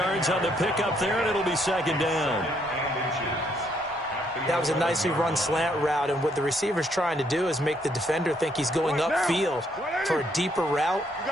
on the pickup there, and it'll be 2nd down. That was a nicely run slant route, and what the receiver's trying to do is make the defender think he's going upfield for a deeper route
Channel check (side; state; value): both; normal; correlation 0.71